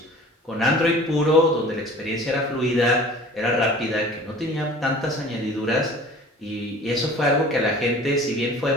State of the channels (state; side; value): normal; both; correlation 0.45